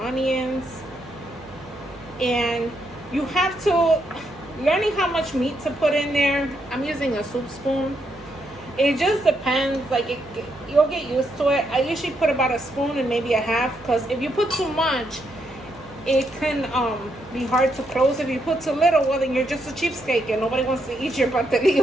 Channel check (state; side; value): noise; right; hum, 21 dB below the sound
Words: onions. And you have to, learning how much meat to put in there. I'm using a soup spoon. It just depends. Like you'll get used to it. I usually put about a spoon and maybe a half, because if you put too much, it can be hard to close. If you put too little, well, then you're just a cheapskate and nobody wants to eat your